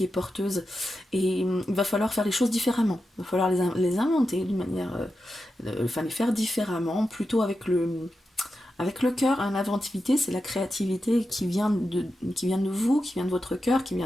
est porteuse. Et il va falloir faire les choses différemment. Il va falloir les inventer d'une manière... les faire différemment, plutôt avec le cœur. L'inventivité, c'est la créativité qui vient de vous, qui vient de votre cœur, qui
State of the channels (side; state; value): both; normal; correlation 0.89